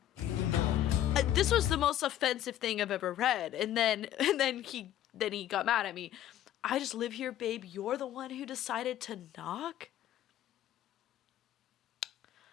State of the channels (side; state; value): right; quieter; 12.1 dB